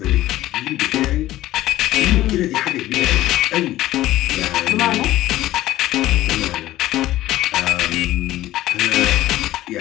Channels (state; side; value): quieter; right; 15.3 dB